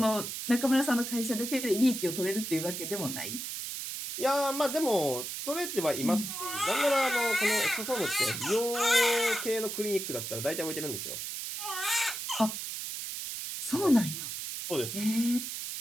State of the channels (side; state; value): right; noise; hiss, 6 dB below the sound